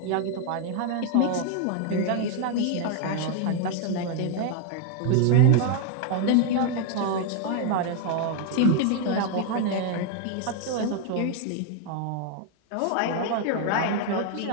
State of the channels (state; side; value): different; both; correlation 0.00